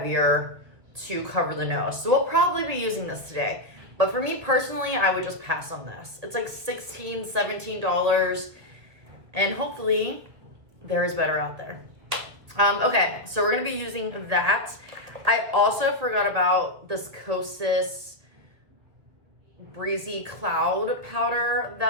to cover the nose. So we'll probably be using this today. But for me personally, I would just pass on this. It's like $16, $17, and hopefully there is better out there. Okay, so we're gonna be using that. I also forgot about this Kosas Breezy Cloud powder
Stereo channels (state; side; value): late; left; 1.6 ms